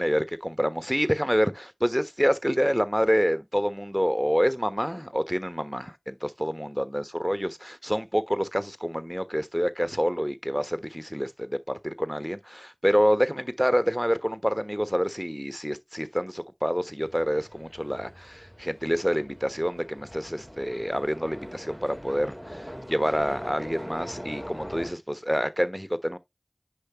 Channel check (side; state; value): both; identical; correlation 1.00